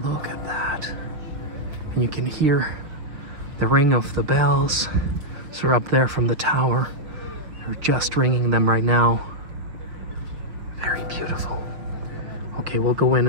Look at that. And you can hear the ring of the bells. So we're up there from the tower. They're just ringing them right now. Very beautiful. Okay, we'll go in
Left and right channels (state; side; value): late; left; 6.2 ms